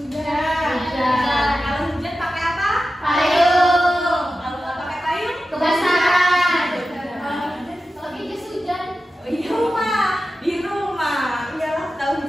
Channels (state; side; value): normal; both; correlation 0.92